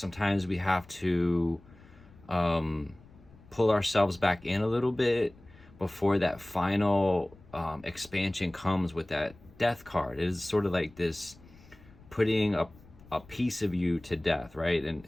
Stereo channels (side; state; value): left; noise; rumble, 24 dB below the sound